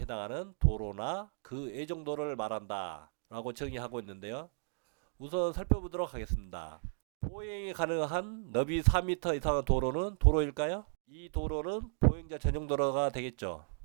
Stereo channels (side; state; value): left; silent; digital silence